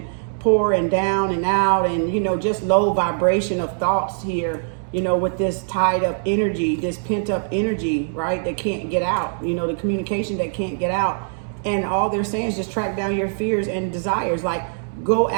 poor and down and out, and, you know, just low vibration of thoughts here, you know, with this tied up energy, this pent up energy, right, that can't get out, you know, the communication that can't get out. And all they're saying is just track down your fears and desires. Like, go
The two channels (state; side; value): silent; left; digital silence